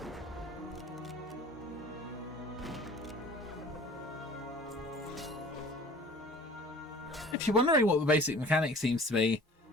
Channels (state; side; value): normal; both; correlation 0.46